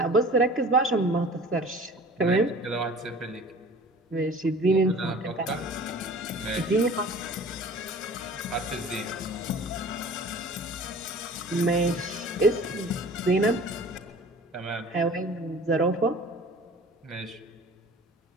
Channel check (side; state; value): both; normal; correlation 0.44